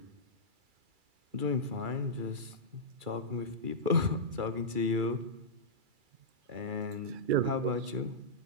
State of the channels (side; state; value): left; late; 2.3 ms